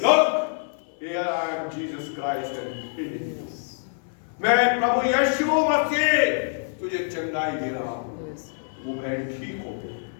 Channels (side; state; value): right; silent; 56 dB below the other